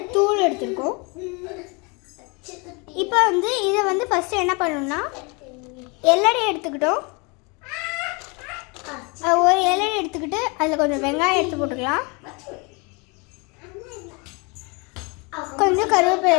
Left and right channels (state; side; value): quieter; right; 30.1 dB